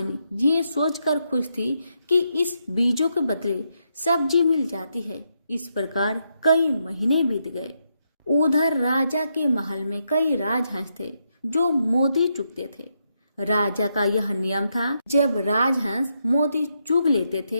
ये सोचकर खुश थी कि इस बीजों के बदले सब्जी मिल जाती है। इस प्रकार कई महीने बीत गए। उधर राजा के महल में कई राजहंस थे जो मोती चुगते थे। राजा का यह नियम था, जब राजहंस मोती चुग लेते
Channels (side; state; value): both; inverted; correlation -0.81